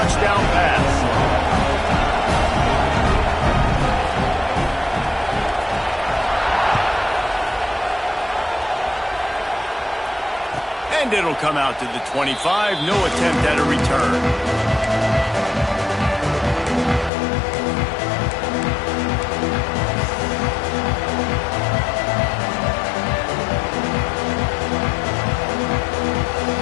pass. And it'll come out to the 25. No attempt at a return.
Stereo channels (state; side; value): drops out; right; at 17.1 s